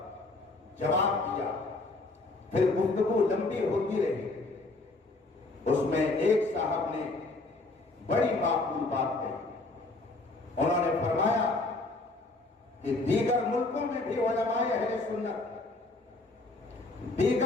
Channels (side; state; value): right; quieter; 3.2 dB